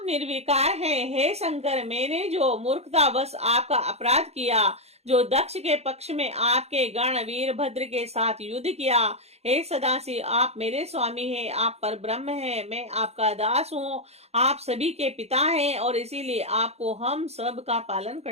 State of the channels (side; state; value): left; late; 0.31 ms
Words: निर्विकार हैं। हे शंकर, मैंने जो मूर्खतावश आपका अपराध किया, जो दक्ष के पक्ष में आपके गण वीरभद्र के साथ युद्ध किया, हे सदाशिव, आप मेरे स्वामी हैं, आप पर ब्रह्म हैं, मैं आपका दास हूँ, आप सभी के पिता हैं, और इसीलिए आपको हम सब का पालन